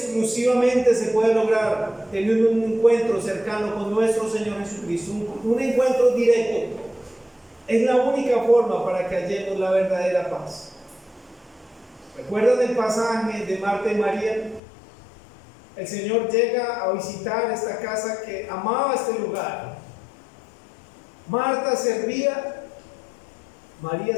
se puede lograr teniendo un encuentro cercano con nuestro Señor Jesucristo, un encuentro directo. Es la única forma para que hallemos la verdadera paz. ¿Recuerdan el pasaje de Marta y María? El Señor llega a visitar esta casa que amaba este lugar. Marta servía, María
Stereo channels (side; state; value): right; drops out; at 14.6 s